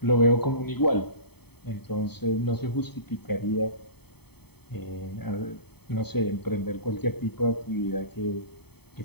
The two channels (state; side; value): late; right; 0.97 ms